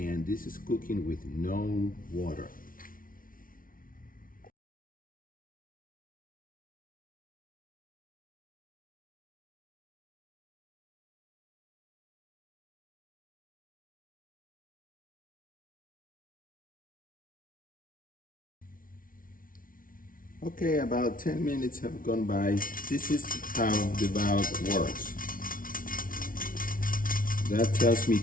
this is cooking with no water. Okay, about 10 minutes have gone by. This is how the valve works. That tells me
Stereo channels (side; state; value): right; late; 0.40 ms